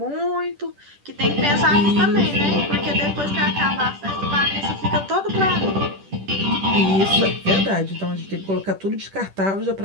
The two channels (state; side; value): late; left; 10 ms